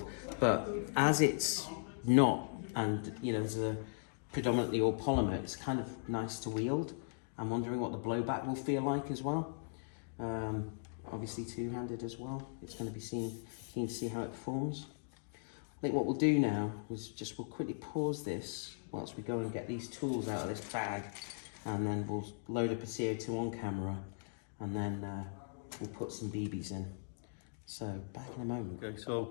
But as it's not, and, you know, there's a predominantly all polymer, it's kind of nice to wield. I'm wondering what the blowback will feel like as well. Obviously two-handed as well. It's going to be keen to see how it performs. I think what we'll do now is just we'll quickly pause this whilst we go and get these tools out of this bag, and then we'll load up a CO2 on camera, and then we'll put some BBs in. So back in a moment. Okay,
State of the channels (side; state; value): right; silent; digital silence